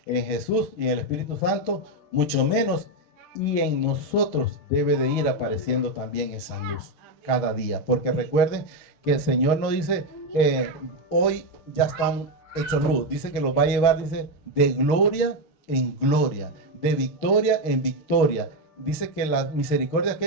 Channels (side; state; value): right; late; 6.4 ms